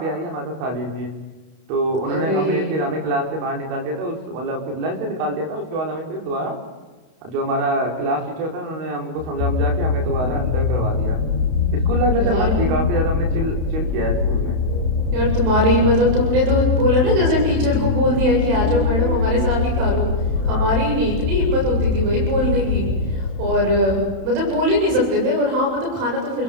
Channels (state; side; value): late; left; 31 ms